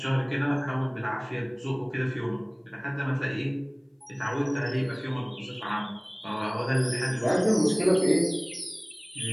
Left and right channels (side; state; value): both; identical; correlation 1.00